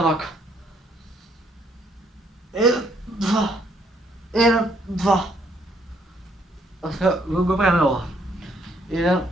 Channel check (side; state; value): both; normal; correlation 0.69